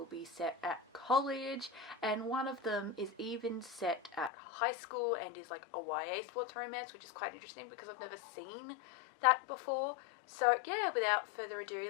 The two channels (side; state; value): right; drops out; at 4.3 s